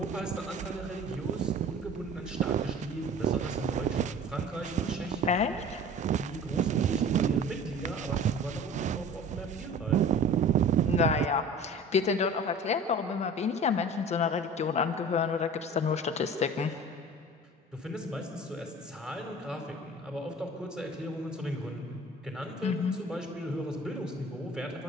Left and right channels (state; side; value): normal; both; correlation 0.42